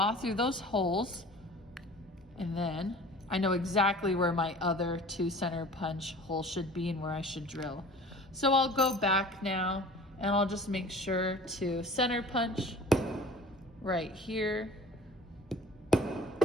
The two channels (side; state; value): both; normal; correlation 0.44